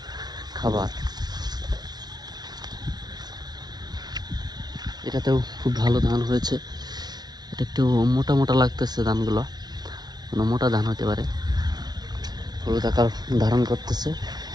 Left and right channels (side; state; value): left; late; 0.19 ms